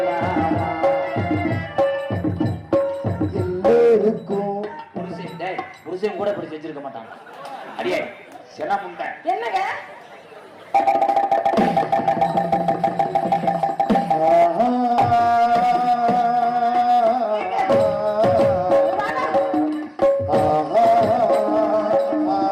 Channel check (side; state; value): both; identical; correlation 1.00